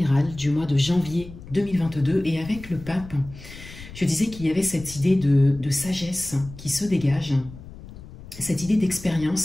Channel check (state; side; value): noise; left; rumble, 16 dB below the sound